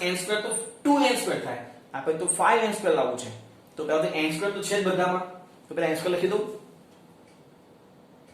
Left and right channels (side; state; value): both; identical; correlation 1.00